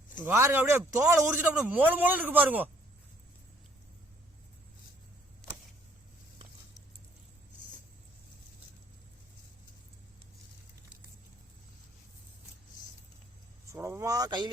பாருங்க அப்படியே தோலை உரிச்சிட்டு அப்படியே மோள மோள இருக்கு பாருங்க. சுலபமா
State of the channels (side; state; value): both; normal; correlation 0.63